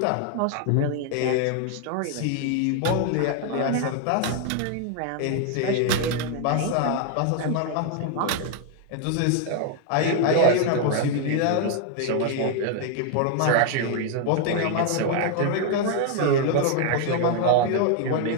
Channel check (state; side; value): different; both; correlation 0.00